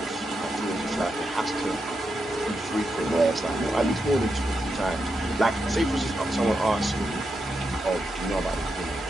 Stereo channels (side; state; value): both; normal; correlation 0.85